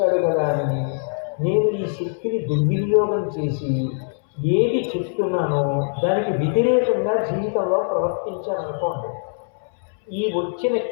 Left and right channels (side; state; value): right; silent; 63 dB below the other